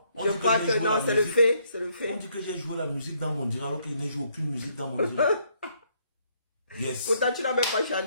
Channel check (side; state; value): both; inverted; correlation -0.70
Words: Je crois que non, c'est le fait, c'est le fait. On dit que j'ai joué la musique dans mon direct alors que je n'ai joué aucune musique dans mon direct. Yes. Pourtant, tu n'as même pas